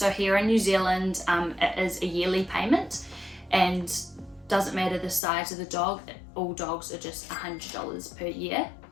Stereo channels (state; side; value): drops out; right; at 5.2 s